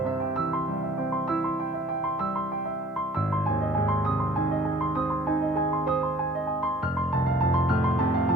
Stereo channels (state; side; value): normal; both; correlation 0.53